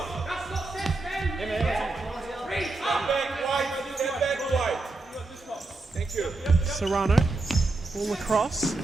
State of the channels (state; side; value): quieter; left; 3.2 dB